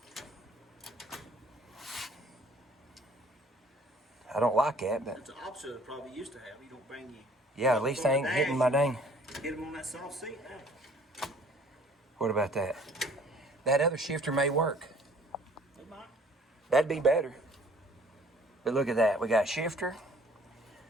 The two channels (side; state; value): both; normal; correlation 0.56